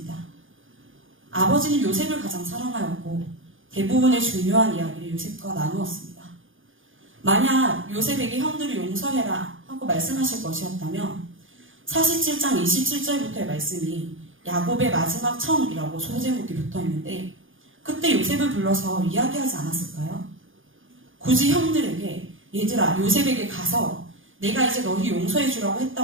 아버지는 요셉을 가장 사랑하였고 대부분의 중요한 이야기를 요셉과 나누었습니다. 만약 요셉에게 형들을 용서해라 하고 말씀하실 것이었다면 47장 27절부터의 말씀이 야곱의 마지막 청이라고 소제목이 붙어있는데 그때 요셉을 불러서 이야기하지 않았을까요? 굳이 형들에게 얘들아 요셉에게 가서 내가 이제 너희 용서해 주라고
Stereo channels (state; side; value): late; left; 0.58 ms